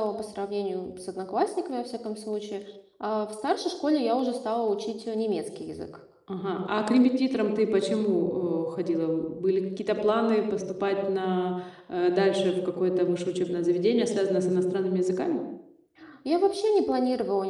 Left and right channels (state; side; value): identical; both; correlation 1.00